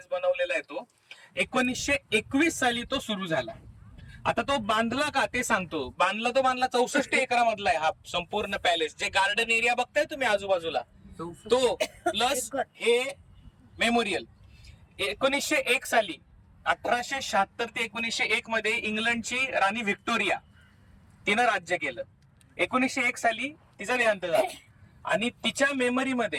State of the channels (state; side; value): identical; both; correlation 1.00